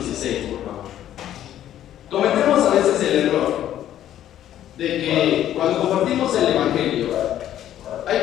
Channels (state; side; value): quieter; right; 11.7 dB